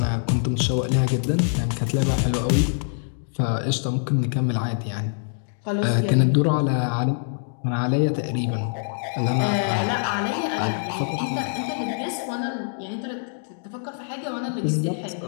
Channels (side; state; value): right; silent; digital silence